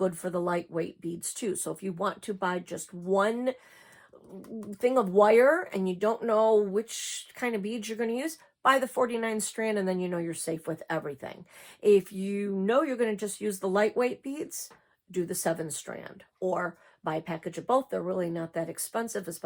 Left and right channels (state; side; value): identical; both; correlation 1.00